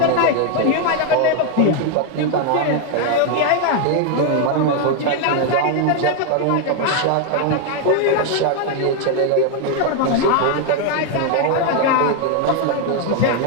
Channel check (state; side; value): different; both; correlation 0.01